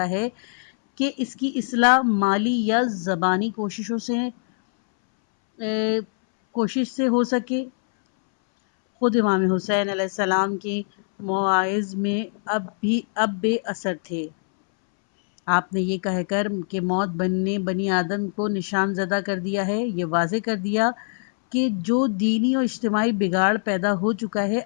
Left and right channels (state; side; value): silent; right; 62 dB below the other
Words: ہے کہ اس کی اصلاح مالی یا زبانی کوشش سے ہو سکے۔ خود امام حسین علیہ السلام کے مواعظ میں اب بے اثر تھے۔ آپ نے یہ کہہ کر کہ موت نے بنی آدم کو نشان زدہ کر دیا ہے، یہ واضح کر دیا کہ جو دینی اور اجتماعی بگاڑ پیدا ہو چکا ہے،